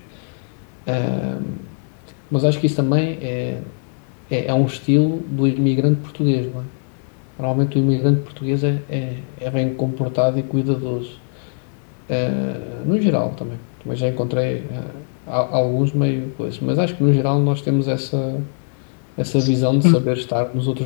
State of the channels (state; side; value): silent; right; digital silence